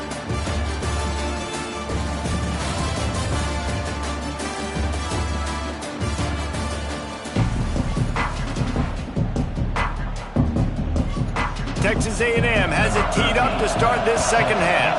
Texas A&M has it teed up to start this second half.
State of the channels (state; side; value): identical; both; correlation 1.00